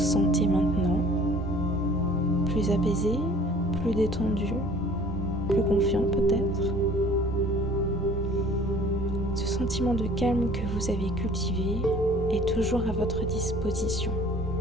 maintenant. Plus apaisé, plus détendu, plus confiant peut-être. Ce sentiment de calme que vous avez cultivé est toujours à votre disposition.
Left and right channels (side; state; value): both; normal; correlation 0.51